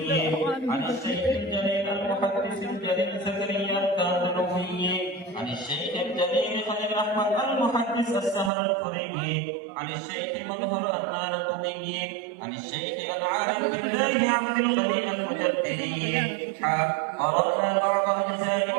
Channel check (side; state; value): left; drops out; at 8.5 s